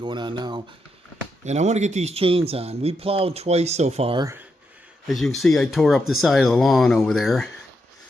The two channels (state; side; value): normal; both; correlation 0.82